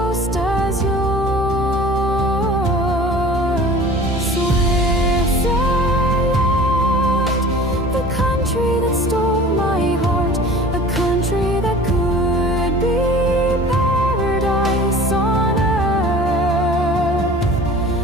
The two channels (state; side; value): normal; both; correlation 0.43